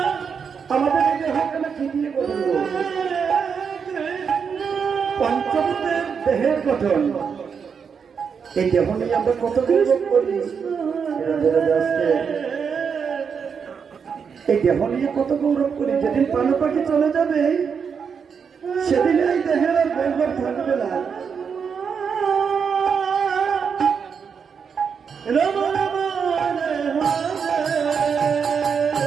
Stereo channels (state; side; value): quieter; left; 6.4 dB